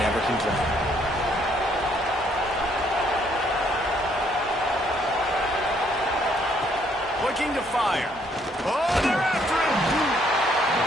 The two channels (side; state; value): both; normal; correlation 0.68